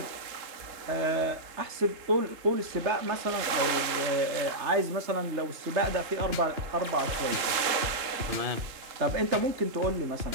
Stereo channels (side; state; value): left; late; 3.7 ms